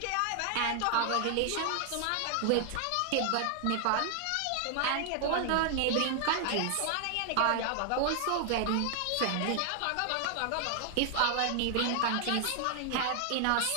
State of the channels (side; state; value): both; different; correlation 0.00